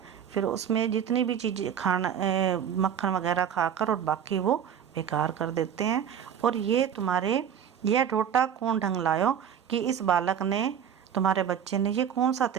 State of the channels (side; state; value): left; quieter; 8.6 dB